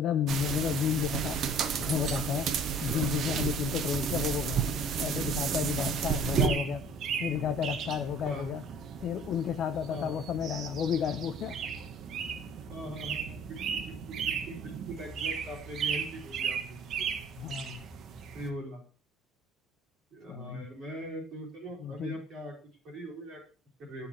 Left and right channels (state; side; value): normal; both; correlation 0.51